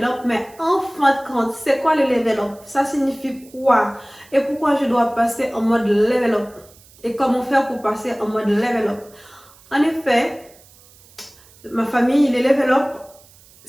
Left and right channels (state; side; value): noise; right; hiss, 26 dB below the sound